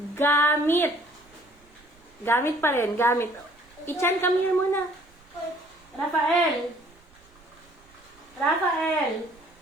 gamit. Gamit pa rin, gamit. Ichan, come here muna. Rafael. Rafael.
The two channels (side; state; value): right; noise; rumble, 29 dB below the sound